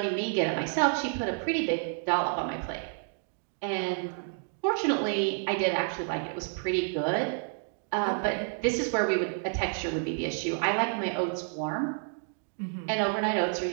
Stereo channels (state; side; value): silent; left; 58 dB below the other